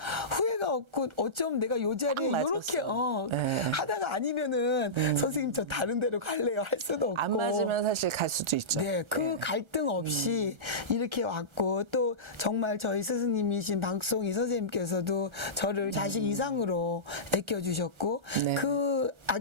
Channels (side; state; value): left; late; 1.3 ms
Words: 후회가 없고 어쩜 내가 요 자리에 딱 요렇게 맞았어. 네. 하다가 아니면은 선생님 저 다른 데로 갈래요 할 수도 없고. 안 맞으면 사실 갈 수도 있죠. 네, 그 갈등 없이 이렇게 왔고 또 정말 저희 스승님이신 박송희 선생님께서도 저를 자식 이상으로 아껴주셨고 네. 그